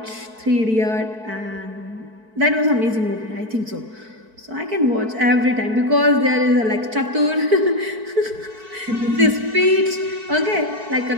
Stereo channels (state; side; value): late; left; 4.5 ms